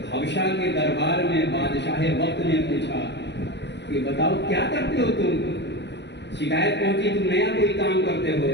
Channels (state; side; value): late; right; 0.51 ms